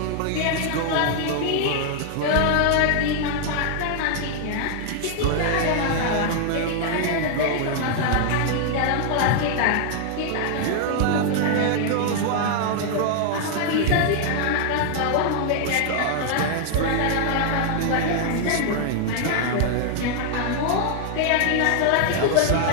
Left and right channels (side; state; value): both; different; correlation 0.00